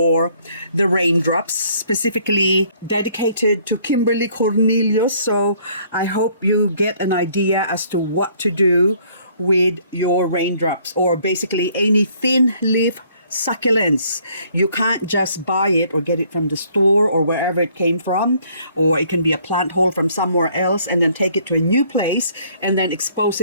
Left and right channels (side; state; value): both; inverted; correlation -0.62